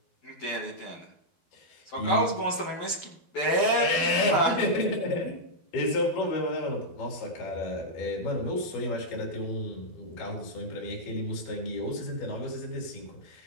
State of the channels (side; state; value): right; late; 12 ms